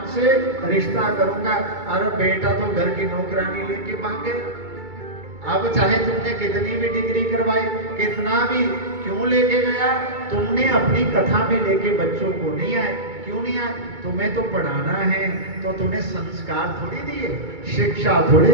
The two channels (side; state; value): left; late; 2.3 ms